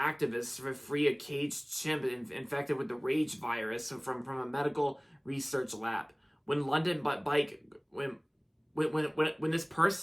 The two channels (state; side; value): identical; both; correlation 1.00